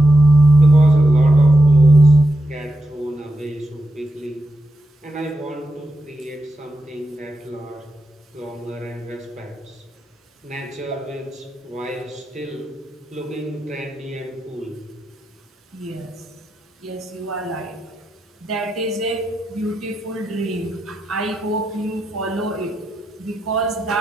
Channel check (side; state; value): both; normal; correlation 0.87